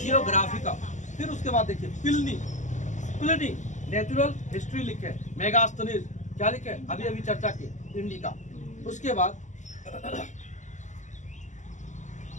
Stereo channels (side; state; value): right; late; 0.35 ms